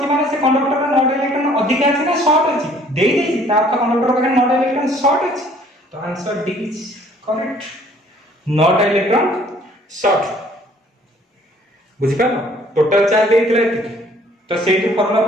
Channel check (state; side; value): normal; both; correlation 0.58